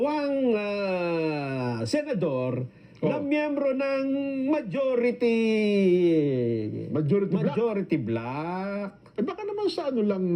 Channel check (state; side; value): identical; both; correlation 1.00